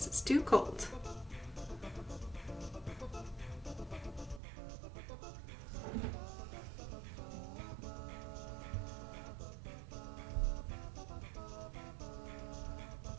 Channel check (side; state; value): left; drops out; at 4.4 s